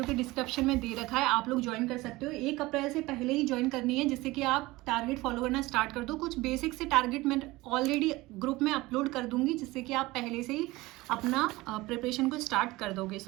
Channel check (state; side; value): quieter; left; 20.2 dB